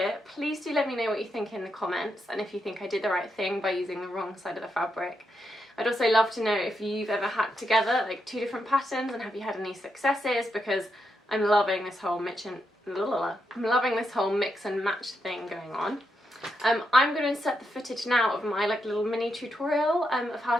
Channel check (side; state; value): both; normal; correlation 0.82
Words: Please do let me know what you think in the comments, and if you think I did the right thing by using the wrong side of the fabric. I'd also love to know if you've ever hacked together like two different patterns, and have you had any successes, because I'm loving this whole mix and match thing going on. I'm going to insert the footage now of my like little mini tutorial of how